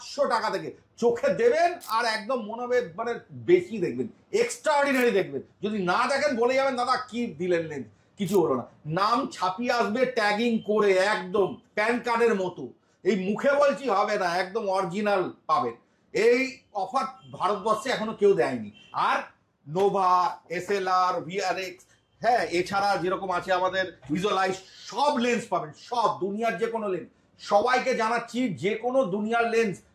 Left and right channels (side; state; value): both; identical; correlation 1.00